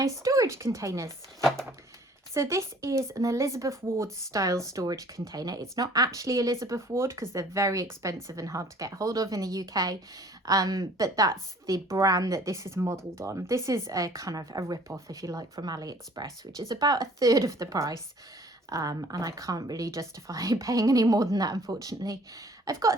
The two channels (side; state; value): both; normal; correlation 0.53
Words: storage containers. So this is an Elizabeth Ward style storage container. It's not actually Elizabeth Ward because they're very expensive and hard to get hold of in the UK. But that's the brand that this is modelled on. This is a kind of a rip-off, if you like, from AliExpress, which is about a third of the price. And I can't really justify paying any more than that, unfortunately. I've